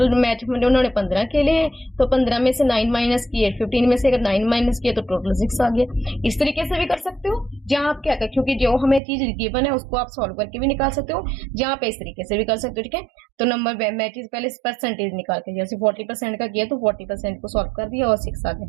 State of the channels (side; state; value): left; drops out; at 9.0 s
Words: मैच में उन्होंने 15 खेले हैं तो 15 में से 9 माइनस किए, 15 में से अगर 9 माइनस किए तो टोटल 6 आ गया। इस तरीके से भी कर सकते हो, जहां आप क्या कर, क्योंकि जो हमें चीज गिवन है उसको आप सॉल्व करके भी निकाल सकते हो, जहां पे इस तरीके से भी कर सकते हो, ठीक है। तो नंबर मैचेस पहले परसेंटेज निकाल के, जैसे 40% का किया तो 40% को सॉल्व कर दिया और 6 आ